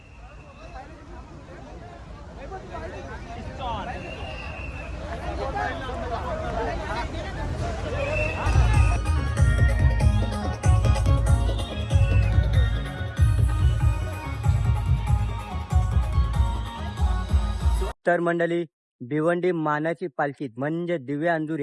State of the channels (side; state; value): both; identical; correlation 1.00